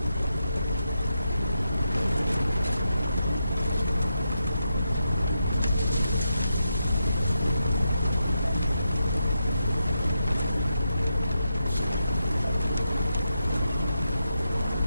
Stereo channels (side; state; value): both; inverted; correlation -0.85